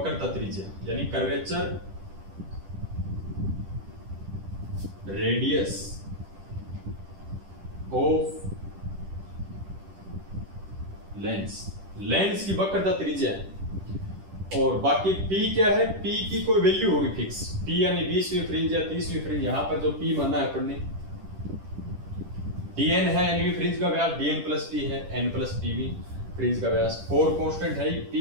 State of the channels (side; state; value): left; late; 10 ms